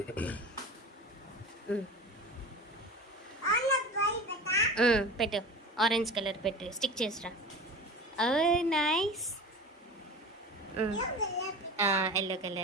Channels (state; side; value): normal; both; correlation 0.33